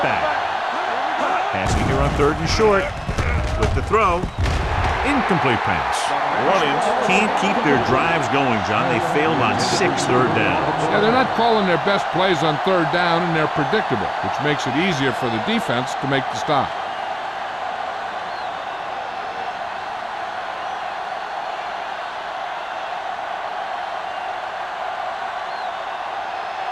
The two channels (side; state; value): both; identical; correlation 1.00